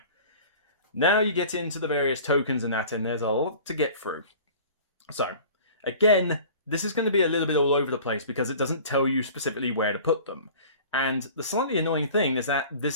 Now you get into the various tokens and that, and there's a lot to get through. So, again, this is going to be a little bit all over the place because it doesn't tell you specifically where to put them. And the slightly annoying thing is that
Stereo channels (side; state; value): both; inverted; correlation -0.43